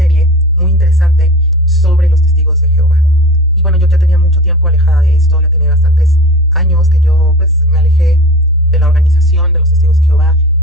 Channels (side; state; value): both; normal; correlation 0.34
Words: muy interesante sobre los testigos de Jehová. Y bueno, yo ya tenía mucho tiempo alejada de esto, ya tenía bastantes años que yo pues me alejé de la organización de los testigos de Jehová.